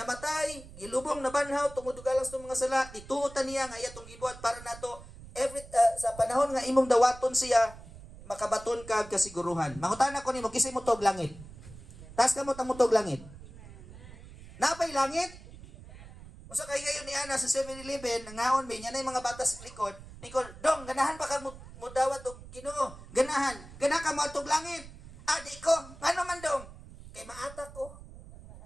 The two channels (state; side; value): noise; right; rumble, 17 dB below the sound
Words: gilubong na banhaw, tungod galang sa mga sala, ituotan niya nga iyatong gibuhat para nato sa panahon nga imong dawaton siya, makabaton ka kasiguruhan. Mangutan ako nimo, kisay mo tog langit. Taas ka mo tog langit. Napay langit? Usa kay gayon ni ana sa 7-Eleven, nangaon mi nya nay mga batas likod. Nikol, dong ganahan pa ka mo dawat og Ginoo. Ganahan. Gana ka mo tog langit. Adi ko, ngano man dong? Kay maatak ko.